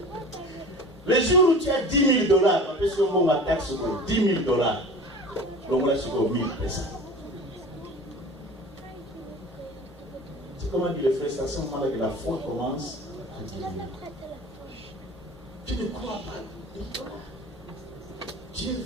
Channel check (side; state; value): both; normal; correlation 0.39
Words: Le jour où tu as $10 000, parce que on va taxe sur $10 000, donc là sur 1000 personnes. C'est comment dit le frère, c'est à ce moment-là que la foi commence à diminuer. Tu ne crois pas $1000. Dieu